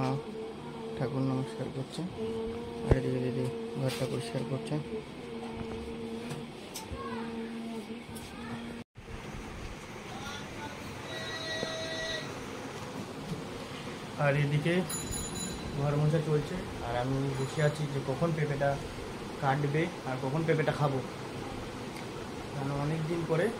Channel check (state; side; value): identical; both; correlation 1.00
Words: ঠাকুর নমস্কার করছে, আর এদিকে দিদি ঘরটা পরিষ্কার করছে। আর এদিকে ঘর মোছা চলছে, আর আমি বসে আছি যে কখন পেঁপেটা কাটবে আর কখন পেঁপেটা খাবো। কারণ অনেক দিন পরে